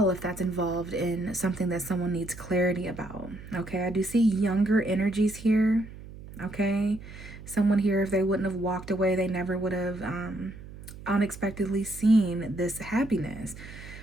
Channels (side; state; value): right; noise; hum, 15 dB below the sound